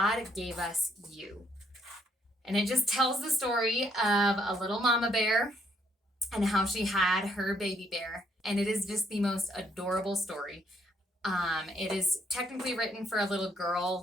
Gave Us You. And it just tells the story of a little mama bear and how she had her baby bear. And it is just the most adorable story. It is technically written for a little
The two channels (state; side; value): normal; both; correlation 0.71